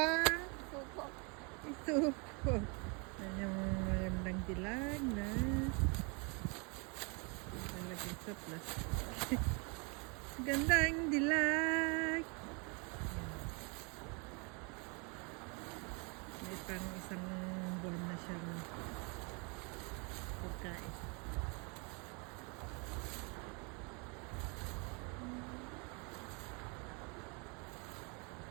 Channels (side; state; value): left; quieter; 32.7 dB